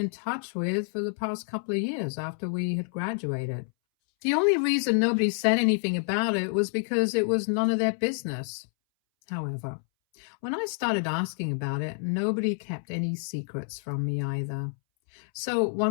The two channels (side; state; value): right; silent; 59 dB below the other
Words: touch with for the past couple of years after we had graduated. The only reason nobody said anything about it was because it was none of their business. However, when I started asking about it, nobody kept any secrets from me either. So